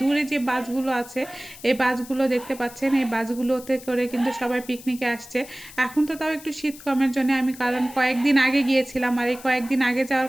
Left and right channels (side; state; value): left; noise; hiss, 18 dB below the sound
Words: দূরে যে বাসগুলো আছে, এই বাসগুলো দেখতে পাচ্ছেন, এই বাসগুলোতে করে কিন্তু সবাই পিকনিকে আসছে। এখন তো তাও একটু শীত কমের জন্য আমি, কারণ কয়েকদিন আগে গিয়েছিলাম, আর এই কয়েকদিন আগে যাওয়ার